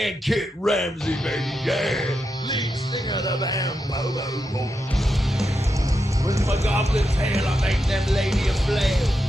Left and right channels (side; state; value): both; normal; correlation 0.86